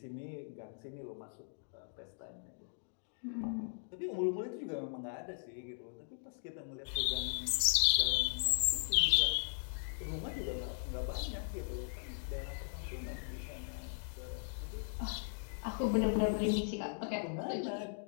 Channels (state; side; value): silent; right; digital silence